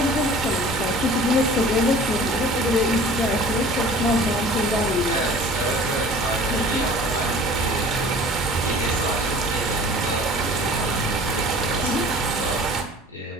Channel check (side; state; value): both; normal; correlation 0.46